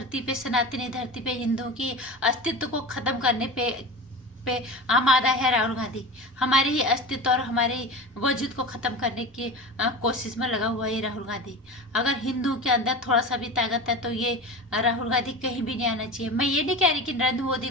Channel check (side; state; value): both; normal; correlation 0.30